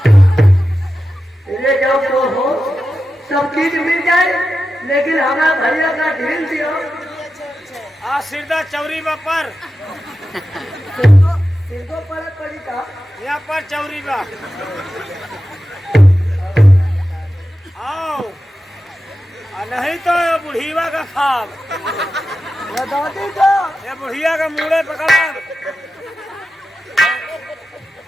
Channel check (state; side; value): normal; both; correlation 0.92